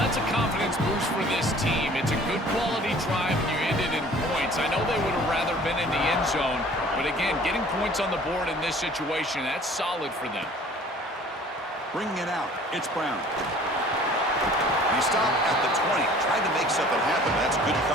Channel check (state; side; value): normal; both; correlation 0.50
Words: that's a confidence boost for this team. It's a good quality drive, and you ended in points. I know they would have rather been in the end zone, but again, getting points on the board in this situation, that's solid for them. Bringing it out, it's Brown. He stopped at the 20, tried to make something happen. That's good